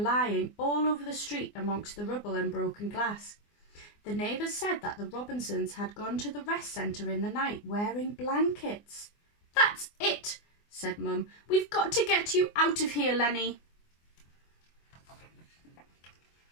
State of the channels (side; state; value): right; late; 24 ms